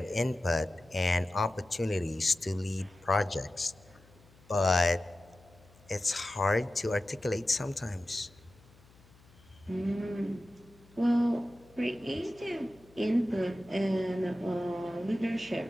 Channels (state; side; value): noise; left; hum, 27 dB below the sound